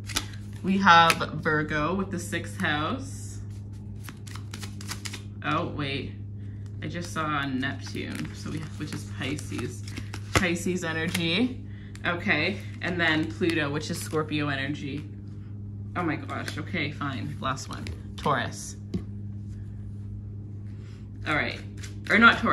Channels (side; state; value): both; identical; correlation 1.00